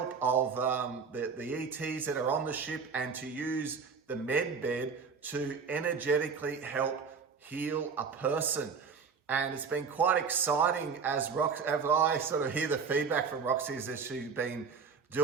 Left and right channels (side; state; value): left; quieter; 5.7 dB